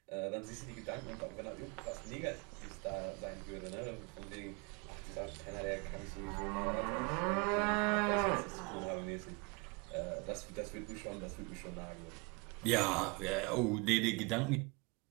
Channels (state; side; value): quieter; left; 29.7 dB